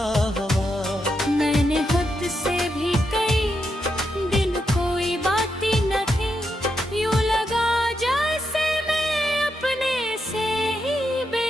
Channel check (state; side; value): normal; both; correlation 0.83